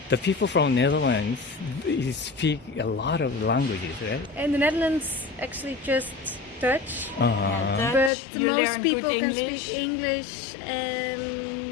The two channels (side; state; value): right; drops out; at 8.1 s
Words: The people from Netherlands speak a lot of languages, right? In the Netherlands, actually just Dutch. Yeah, But Dutch. You most learn people good can English. speak English